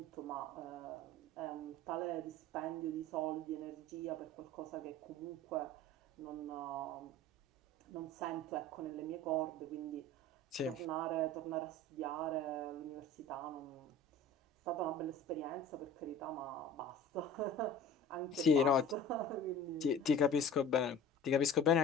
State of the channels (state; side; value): normal; both; correlation 0.40